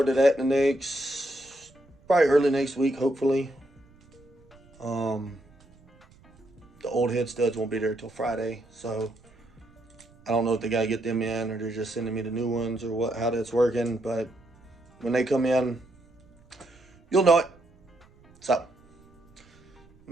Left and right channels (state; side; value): noise; right; rumble, 28 dB below the sound